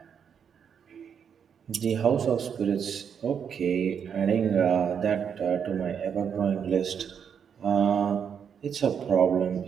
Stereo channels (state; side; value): quieter; left; 7.5 dB